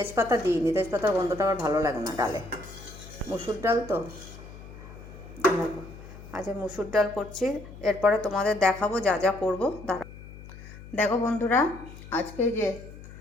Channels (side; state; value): left; noise; hum, 16 dB below the sound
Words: দিইনি। তেজপাতার গন্ধটা আমার ভালো লাগে না ডালে। মুসুর ডাল তো আচ্ছা, মুসুর ডাল করছি, এরপরে তোমাদের দেখাবো যা যা করবো। দেখো বন্ধুরা, আজকে যে